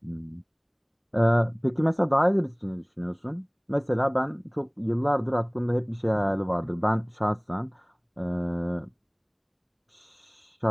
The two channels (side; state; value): both; identical; correlation 1.00